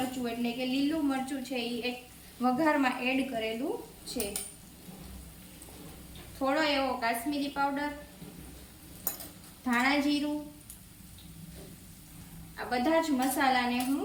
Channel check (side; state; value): both; identical; correlation 1.00